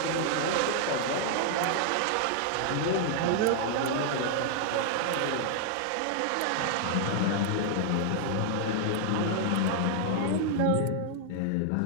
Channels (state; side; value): different; both; correlation 0.00